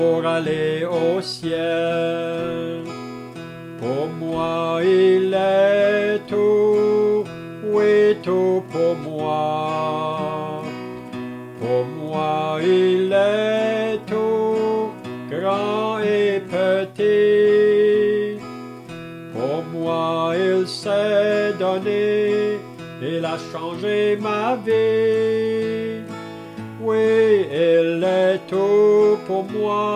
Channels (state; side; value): identical; both; correlation 1.00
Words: aller au ciel. Pour moi il est tout, oui tout pour moi. Pour moi il est tout, grand et petit. Pour moi il s'est donné, il a changé ma vie. Oui, il est tout pour